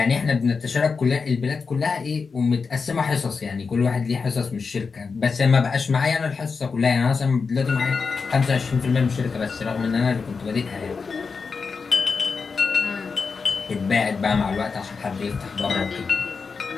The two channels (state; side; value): quieter; right; 5.0 dB